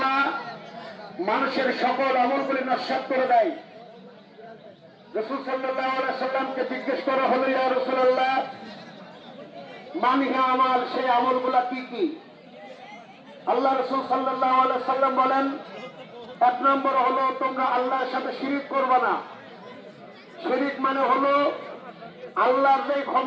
মানুষের সকল আমলগুলি নস্যাৎ করে দেয়। রাসূল সাল্লাল্লাহু আলাইহি সাল্লামকে জিজ্ঞেস করা হলো, ইয়া রাসূলুল্লাহ, মানহিয়া আমাল, সেই আমলগুলা কি কি? আল্লাহ রাসূল সাল্লাল্লাহু আলাইহি সাল্লাম বলেন, এক নম্বর হলো তোমরা আল্লাহর সাথে শিরিক করবে না। শিরিক মানে হলো আল্লাহর যে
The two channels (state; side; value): identical; both; correlation 1.00